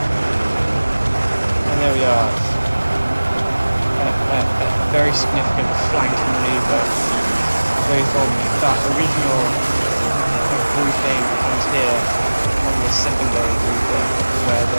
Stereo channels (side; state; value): both; inverted; correlation -1.00